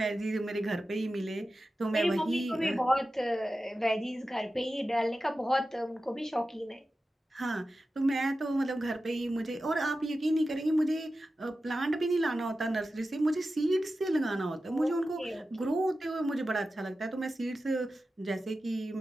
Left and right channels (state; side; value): normal; both; correlation 0.93